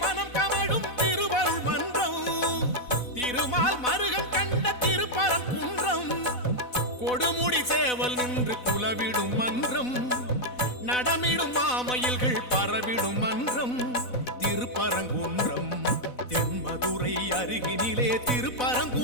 மனம் கமழும் திருவருள் மன்றம், திருமால் மருகன் கண்ட திருப்பரங்குன்றம், கொடுமுடி சேவல் நின்று குலவிடும் மன்றம், நடமிடும் மாமயில்கள் பரவிடும் மன்றம் திருப்பரங்குன்றம். தென்மதுரை அருகினிலே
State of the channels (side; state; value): right; late; 4.0 ms